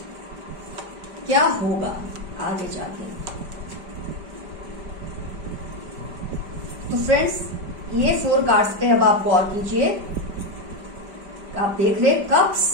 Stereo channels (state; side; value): late; left; 5.1 ms